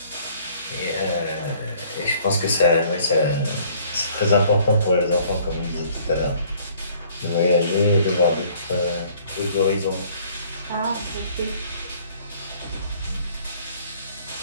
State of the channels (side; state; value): both; inverted; correlation -0.57